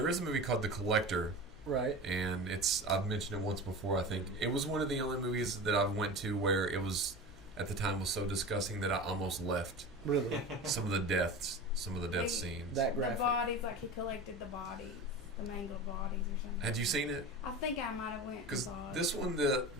is a movie called The Collector. Right. And I've mentioned it once before, I think. It was one of the only movies that I've went to where it was, at the time, was so disgusting that I almost left. Really? Some of the death scenes. That graphic. The bodies, like he collected the bodies, the mangled bodies or something. Had you seen it? I think I might have went. Because this one,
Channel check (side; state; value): both; normal; correlation 0.31